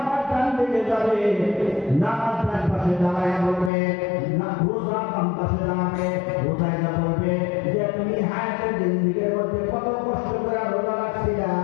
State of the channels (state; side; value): drops out; right; at 3.7 s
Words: ডান দিকে যাবে, নামাজ ডান পাশে দাঁড়ায় বলবে, না রোজা বাম পাশে দাঁড়াবে, রোজায় যা বলবে যে তুমি হায়াতের জিন্দেগির মধ্যে কত কষ্ট করে রোজা রাখছিলা,